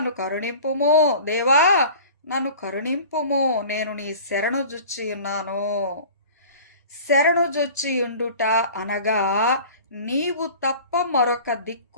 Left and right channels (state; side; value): inverted; both; correlation -0.42